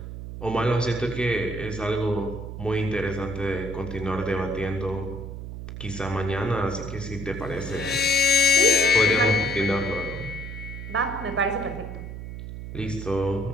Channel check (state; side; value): noise; right; hum, 9 dB below the sound